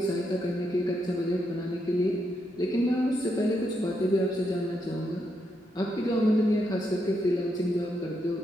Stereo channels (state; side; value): normal; both; correlation 0.80